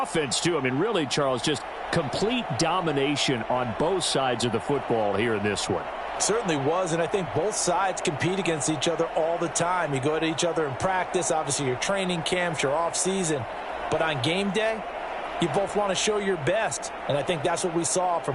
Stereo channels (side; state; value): both; identical; correlation 1.00